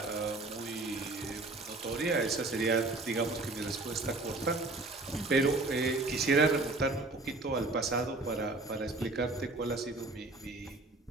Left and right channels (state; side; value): quieter; left; 3.0 dB